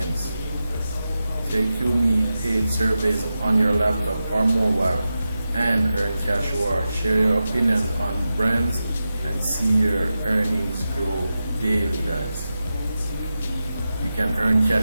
Take QMe paid surveys on your laptop or mobile and earn cash rewards. Share your opinions on brands and see your earnings grow daily guys. You can earn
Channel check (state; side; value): inverted; both; correlation -0.91